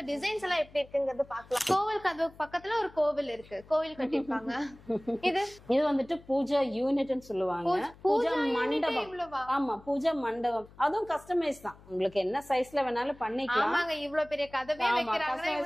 டிசைன்ஸ் எல்லாம் எப்படி இருக்குங்கிறது பாக்கலாம். கோவில் கதவு பக்கத்துல ஒரு கோவில் இருக்கு, கோவில் கட்டிருப்பாங்க. இது வந்துட்டு பூஜா யூனிட்னு சொல்லுவாங்க. பூஜா மண்டபம். ஆமா, பூஜா மண்டபம். அதுவும் கஸ்டமைஸ் தான். உங்களுக்கு என்ன சைஸ்ல வேணாலும் பண்ணிக்கலாம். ஆமாங்க, இவ்வளவு பெரிய கதவே வைக்கிறாங்க.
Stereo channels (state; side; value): noise; left; hum, 23 dB below the sound